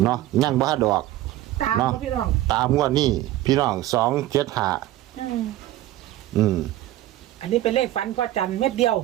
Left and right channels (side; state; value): left; quieter; 14.8 dB